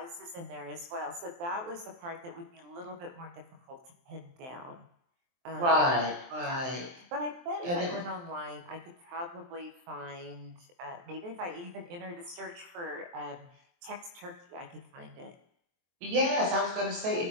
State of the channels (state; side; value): late; left; 23 ms